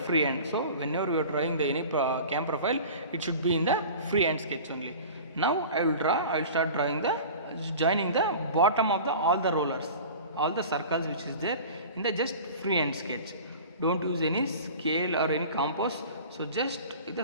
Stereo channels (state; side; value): inverted; both; correlation -0.39